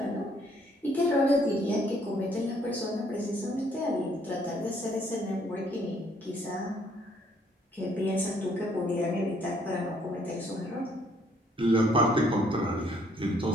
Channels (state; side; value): normal; both; correlation 0.65